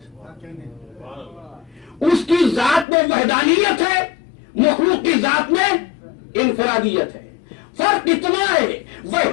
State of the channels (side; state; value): right; drops out; at 2.9 s